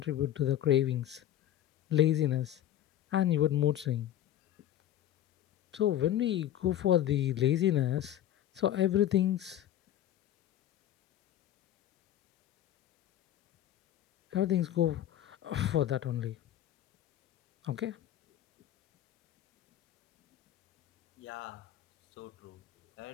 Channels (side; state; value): right; quieter; 11.9 dB